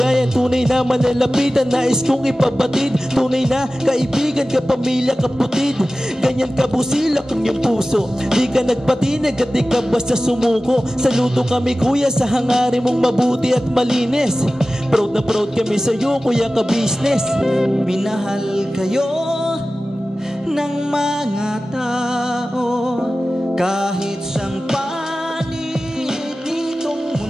Tunay na manalapitan, nais kong ipabatid. Tunay na kaibigan, kapamilya, kaputid. Ganyan kabusilak ang iyong puso. Di ka nagpatid at di ka basta sumuko. Saludo kami kuya sa hangarin mong mabuti at malinis. Proud na proud kami sa'yo kuya ka business. Minahal kayo ng mga tao kahit sang panig nitong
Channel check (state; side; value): normal; both; correlation 0.96